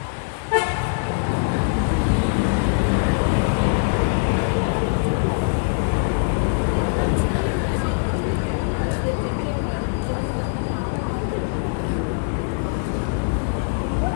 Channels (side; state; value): right; silent; digital silence